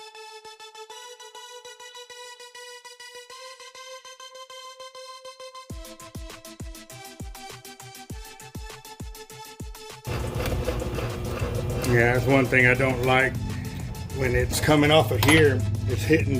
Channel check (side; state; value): both; identical; correlation 1.00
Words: Yeah, that's one thing I don't like. When it's coming off of here, it's hitting